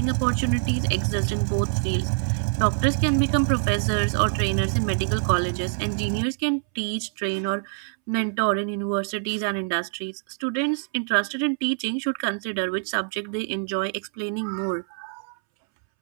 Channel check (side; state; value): left; silent; 62 dB below the other